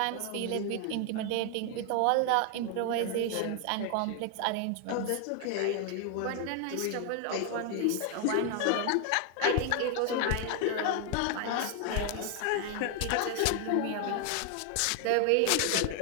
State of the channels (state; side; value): different; both; correlation 0.00